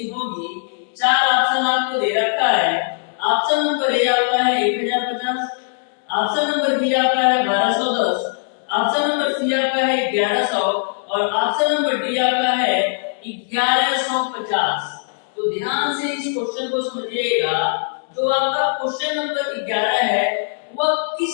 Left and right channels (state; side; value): silent; right; digital silence